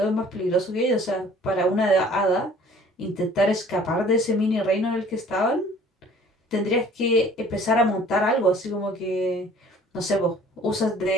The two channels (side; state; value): both; normal; correlation 0.52